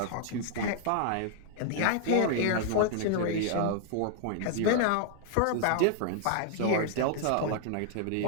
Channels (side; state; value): both; different; correlation 0.00